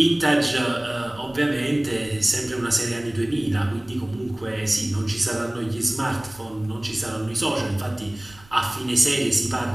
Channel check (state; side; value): noise; right; rumble, 24 dB below the sound